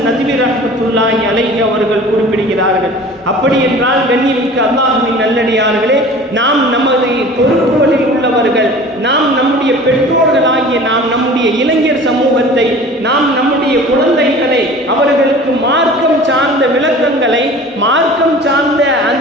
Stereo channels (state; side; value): normal; both; correlation 0.42